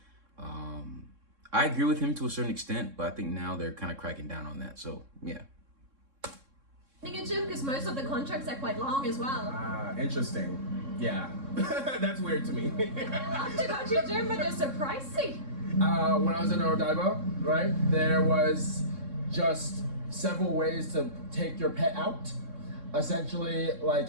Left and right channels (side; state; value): left; late; 3.6 ms